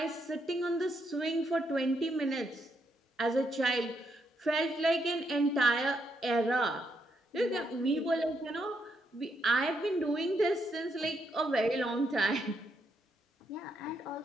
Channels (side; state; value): both; normal; correlation 0.78